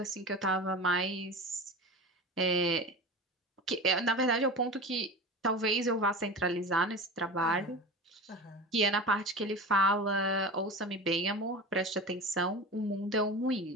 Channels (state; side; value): normal; both; correlation 0.30